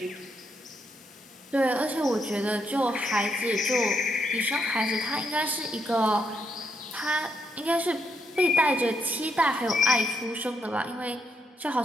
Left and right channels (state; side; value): normal; both; correlation 0.78